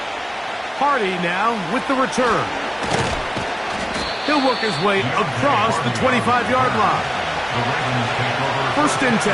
Hardy now with the return. He'll work his way across the 25-yard line. First and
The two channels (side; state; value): both; identical; correlation 1.00